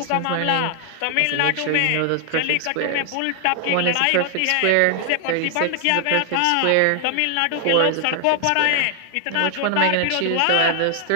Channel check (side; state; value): both; different; correlation 0.00